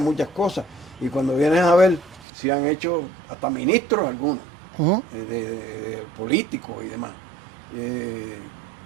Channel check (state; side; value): drops out; left; at 2.2 s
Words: cosas. Y cuando vienes a ver, si han hecho hasta ministros algunos, de políticos y demás.